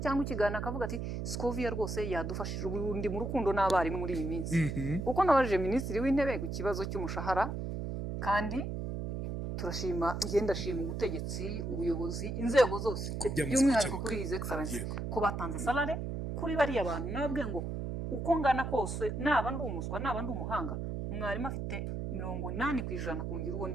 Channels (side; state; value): right; noise; hum, 4 dB below the sound